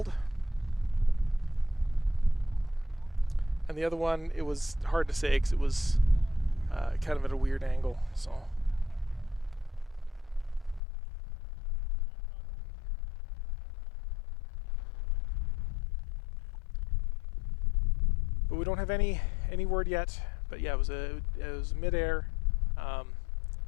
And the other one, it was hard to say because it was kind of at a weird angle. So. But we don't have any word yet. but yeah, it was midair.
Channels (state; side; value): drops out; right; at 10.8 s